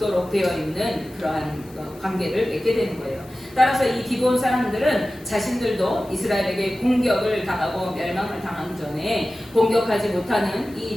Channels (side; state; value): left; noise; hiss, 26 dB below the sound